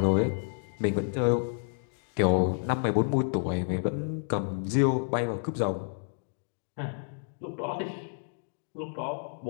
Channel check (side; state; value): right; silent; digital silence